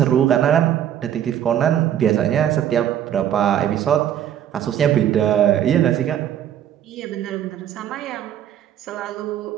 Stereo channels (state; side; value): quieter; left; 10.5 dB